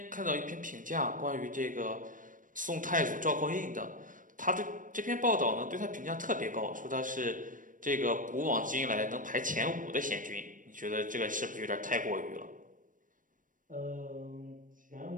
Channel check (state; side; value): late; left; 0.38 ms